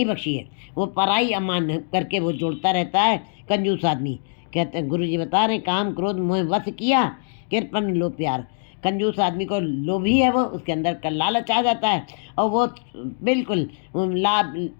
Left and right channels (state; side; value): silent; right; digital silence